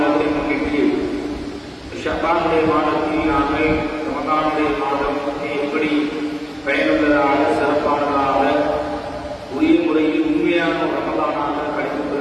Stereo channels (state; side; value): identical; both; correlation 1.00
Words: முன்னிட்டு ஷஅபானுடைய மாதத்தில் நாங்கள் ரமலானுடைய மாதம் எப்படி பயனுள்ளதாக சிறப்பானதாக உரிய முறையில் உண்மையான ரமலானாக கழித்து